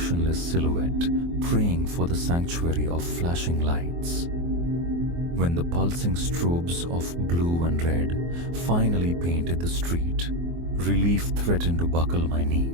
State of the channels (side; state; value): left; late; 24 ms